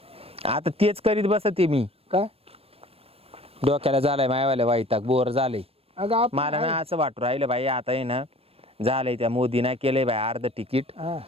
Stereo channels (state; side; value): late; left; 0.28 ms